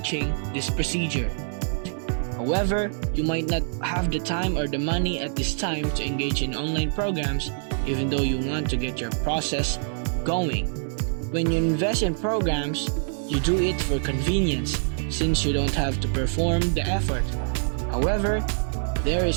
this procedure. However, you might not have the time or the money at this time to engage in online programs, even though you want to get your process going. When you invest in programs, you do it for convenience, since you don't have to perform the effort. However, there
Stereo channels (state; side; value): silent; left; digital silence